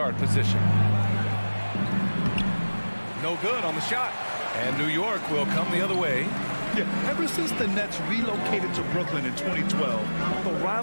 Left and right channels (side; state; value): both; inverted; correlation -1.00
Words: position. No good on the shot. And New York will come the other way. Yeah, ever since the Nets relocated to Brooklyn in 2012, the